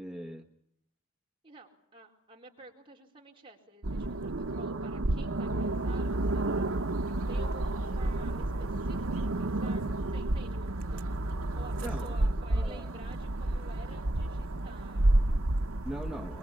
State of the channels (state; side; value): normal; both; correlation 0.76